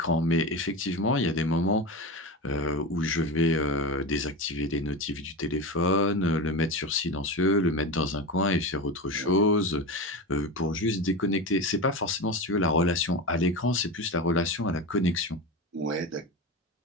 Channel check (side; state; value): both; normal; correlation 0.22